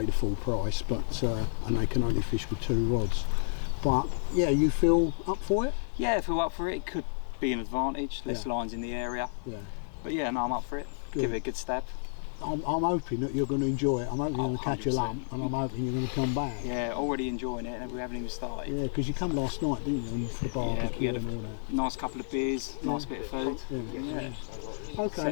the full price, but and they can only fish with 2 rods. But yeah, you feel up for it? Yeah, I feel up for it. It could be an advantage, less lines in the area. Yeah. But yeah, no, I'm up for it. Good. Give it a good stab. I'm hoping that you're going to enjoy it. I'm hoping you're going to catch a lump, and I'm hoping you're going to come back. Yeah, already enjoying it, and we haven't even started. Yeah, because you come last night, didn't you? For the barbecue. Yeah, we had a nice couple of beers, nice bit of food. Yeah.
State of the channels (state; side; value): silent; right; digital silence